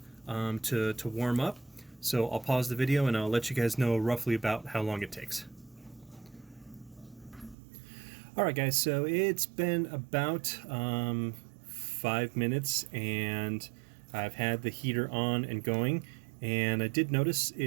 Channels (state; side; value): drops out; left; at 7.6 s